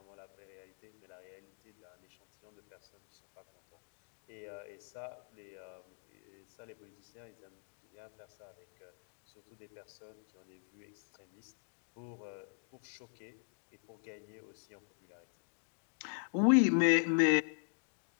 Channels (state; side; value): silent; right; 50 dB below the other